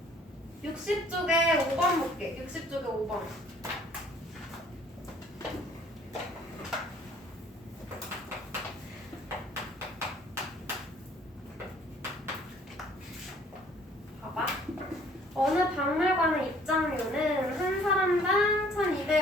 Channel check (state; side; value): normal; both; correlation 0.57